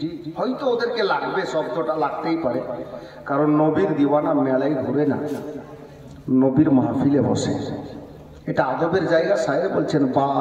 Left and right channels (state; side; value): identical; both; correlation 1.00